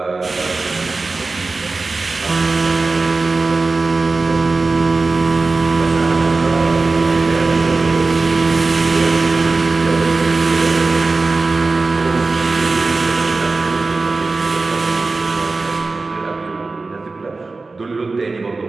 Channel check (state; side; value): quieter; left; 3.7 dB